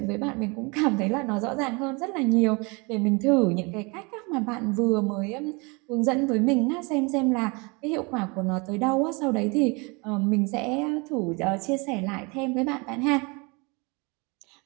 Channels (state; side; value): quieter; left; 29.0 dB